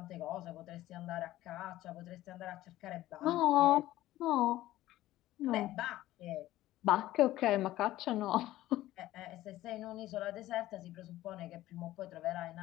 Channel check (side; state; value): right; quieter; 15.4 dB